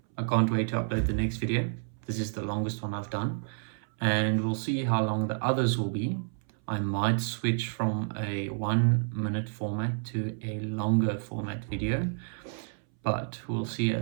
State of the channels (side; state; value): left; silent; 58 dB below the other